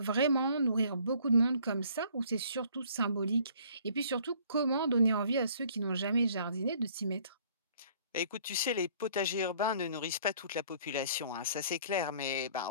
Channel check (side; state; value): both; inverted; correlation -0.57